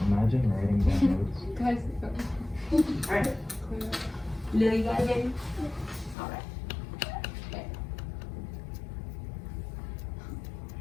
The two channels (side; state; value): right; drops out; at 6.2 s